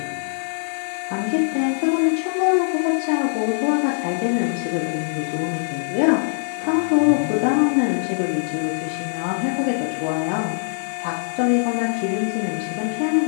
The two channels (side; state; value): right; silent; digital silence